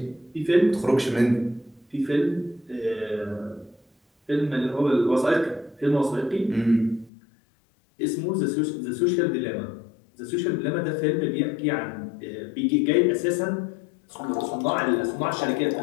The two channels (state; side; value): drops out; right; at 7.1 s